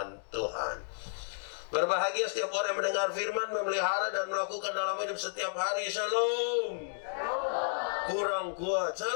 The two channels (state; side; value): silent; right; digital silence